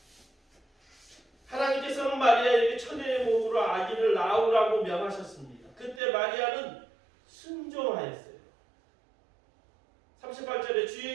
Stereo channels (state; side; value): drops out; left; at 6.0 s